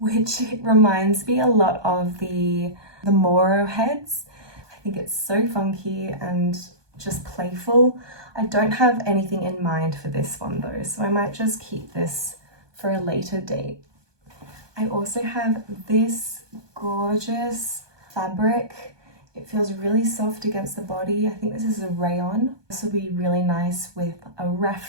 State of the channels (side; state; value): left; late; 1.2 ms